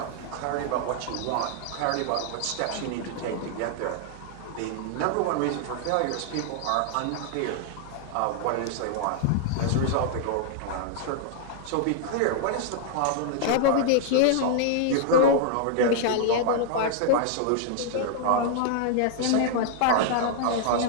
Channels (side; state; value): both; different; correlation -0.01